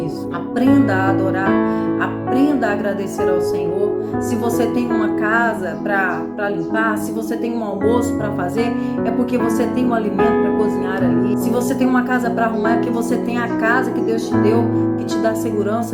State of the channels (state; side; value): identical; both; correlation 1.00